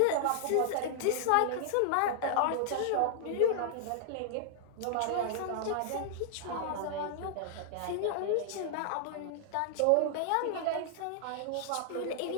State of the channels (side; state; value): both; different; correlation -0.01